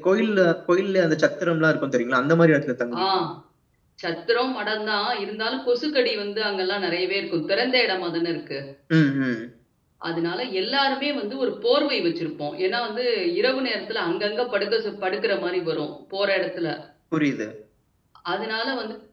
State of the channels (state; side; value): identical; both; correlation 1.00